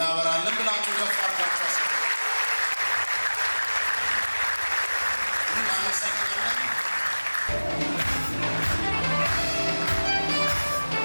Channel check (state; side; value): inverted; both; correlation -1.00